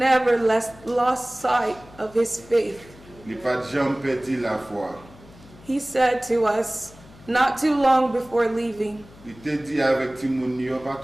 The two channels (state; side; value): noise; left; hum, 22 dB below the sound